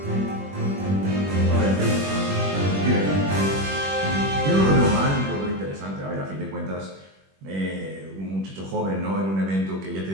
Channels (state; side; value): late; left; 21 ms